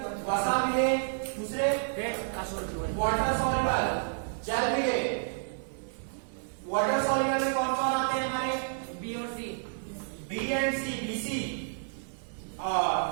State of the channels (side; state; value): left; silent; 58 dB below the other